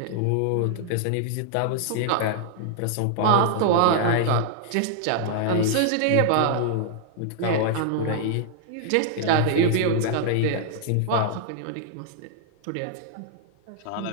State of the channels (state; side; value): different; both; correlation -0.01